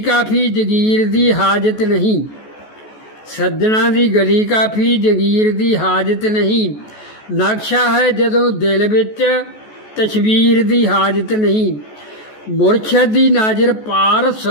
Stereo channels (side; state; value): right; late; 14 ms